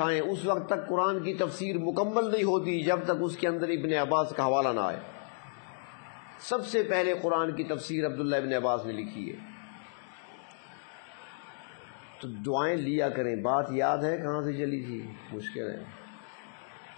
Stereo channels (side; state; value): right; silent; digital silence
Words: اس وقت تک قرآن کی تفسیر مکمل نہیں ہوتی جب تک اس کے اندر ابن عباس کا حوالہ نہ آئے. سب سے پہلے قرآن کی تفسیر عبداللہ ابن عباس نے لکھی ہے. تو دعائیں لیا کریں. بات یاد ہے کہاں سے چلی تھی؟ مشکل ہے.